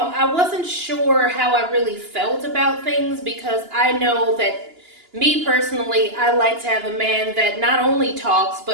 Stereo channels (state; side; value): late; left; 2.9 ms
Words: wasn't sure how I really felt about things, because I know that me personally, I like to have a man that not only talks,